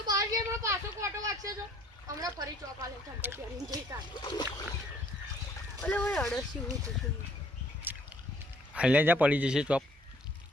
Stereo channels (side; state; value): both; normal; correlation 0.60